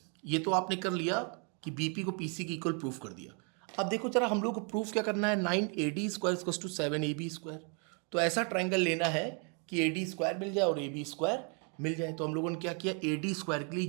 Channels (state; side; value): quieter; left; 37.2 dB